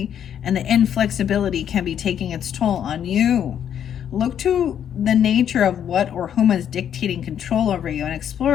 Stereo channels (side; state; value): right; quieter; 9.3 dB